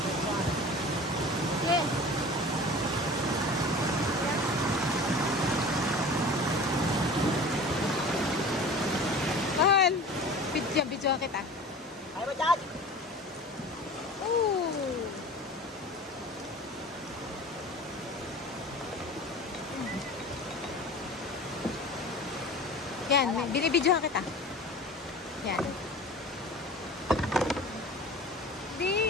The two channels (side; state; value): both; normal; correlation 0.38